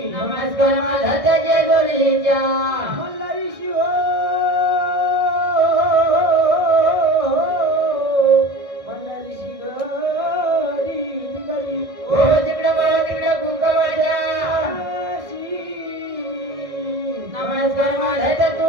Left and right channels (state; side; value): late; left; 1.6 ms